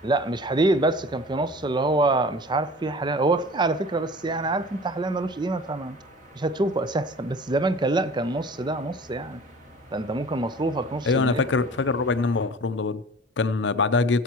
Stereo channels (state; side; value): normal; both; correlation 0.42